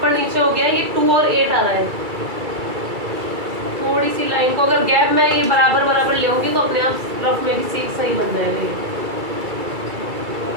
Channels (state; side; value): late; left; 2.3 ms